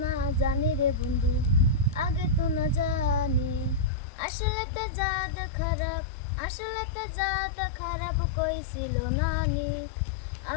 না জানি রে বন্ধু, আগে তো না জানি। আসলেতে জাত খারাপ, আসলেতে জাত খারাপ কইছিল নানি।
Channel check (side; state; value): right; drops out; at 3.9 s